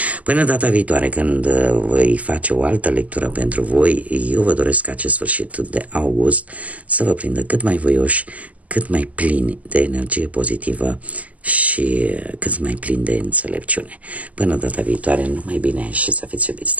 Până data viitoare, când voi face o altă lectură pentru voi, eu vă doresc acest sfârșit de august să vă prindă cât mai voioși, cât mai plini de energie pozitivă și cât mai plini de înțelepciune. Până data viitoare, numai bine și să fiți iubiți,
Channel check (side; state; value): left; late; 0.073 ms